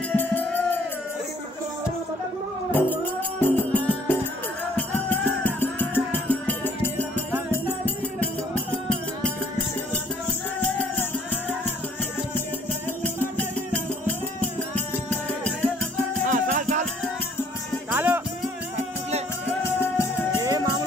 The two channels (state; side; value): normal; both; correlation 0.61